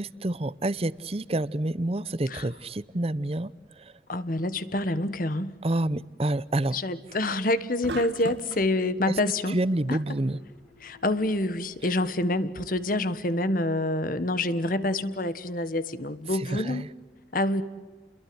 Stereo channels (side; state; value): both; normal; correlation 0.54